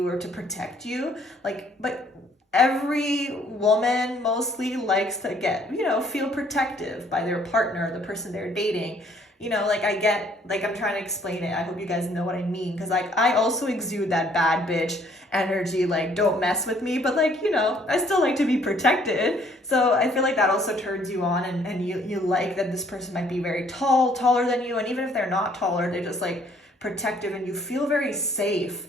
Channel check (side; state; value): both; normal; correlation 0.62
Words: or to protect you. Like, but every woman mostly likes to get, feel protective by their partner, the person they're dating. Like I get, like I'm trying to explain it. I hope you guys know what I mean. Cause like I also exude that bad bitch energy, like don't mess with me, but like, I still like to be protected. So I feel like that also turns you on, and you like that this person might be very taller than you. And even if they're not taller, they're just like protective and you feel very safe